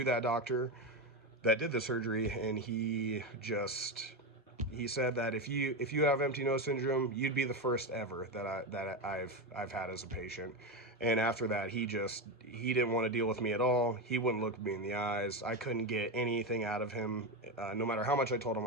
that doctor that did the surgery, and he said that if you have empty nose syndrome, you'd be the first ever that I've had as a patient. And after that, he didn't want to deal with me at all. He wouldn't look me in the eyes. I couldn't get anything out of him, no matter how much I told him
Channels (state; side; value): normal; both; correlation 0.14